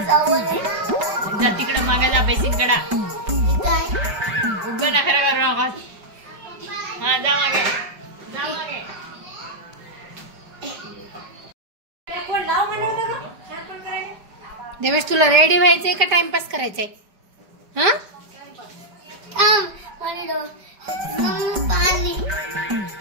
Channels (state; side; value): late; left; 5.2 ms